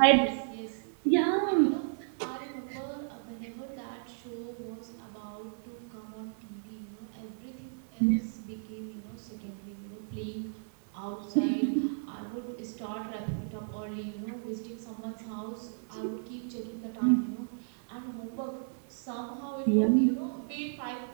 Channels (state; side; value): silent; left; 55 dB below the other